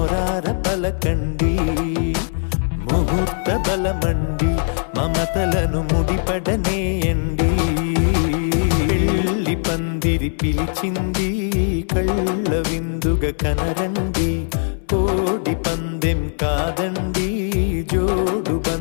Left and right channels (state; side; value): silent; right; 66 dB below the other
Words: పలకండి ముహూర్త బలమండి మమతలను ముడిపడనేయండి పెళ్లి పందిరి పిలిచింది కళ్ళ విందుగ కనరండి కోడి పందెం కాదండి జోడు